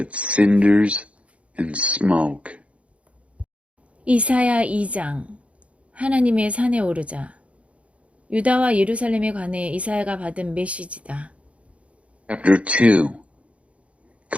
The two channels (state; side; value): late; left; 0.063 ms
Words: cinders and smoke. 이사야 2장 하나님의 산에 오르자. 유다와 예루살렘에 관해 이사야가 받은 메시지다. Chapter 2.